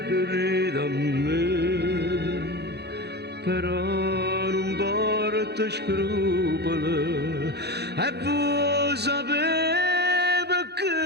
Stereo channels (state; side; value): late; left; 0.48 ms